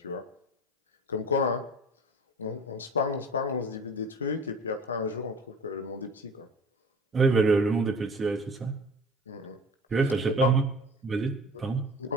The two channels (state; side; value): normal; both; correlation 0.42